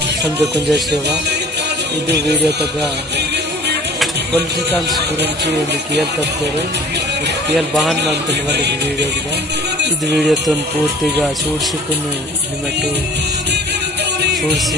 समझे कुंजा सेवा ಇದು ವಿಡಿಯೋ ತಗ ಪೊಲಿಟಿಕಲ್ಸ್ ಗುరించి ಒಂದು ಕೇಳ್ತಾರೆ ಕೇಳ್ ಬಾನ್ ಮಾಡ್ತೀನಿ ಒಂದು ವಿಡಿಯೋಗೆ ಇದು ವಿಡಿಯೋ ತನ್ ಪೂರ್ತಿగా చూడ్సుకుని నిమటు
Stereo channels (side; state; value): both; normal; correlation 0.48